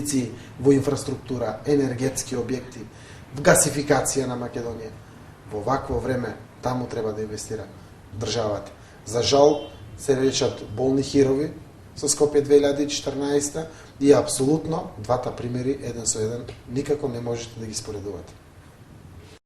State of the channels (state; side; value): identical; both; correlation 1.00